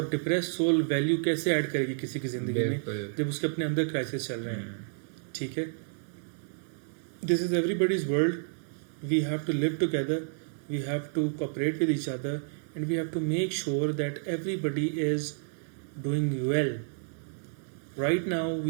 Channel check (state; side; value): silent; left; digital silence